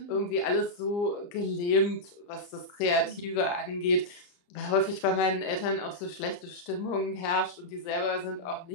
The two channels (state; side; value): late; right; 31 ms